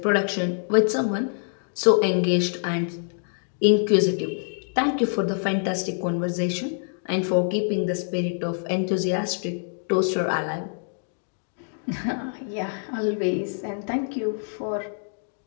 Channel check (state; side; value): silent; right; digital silence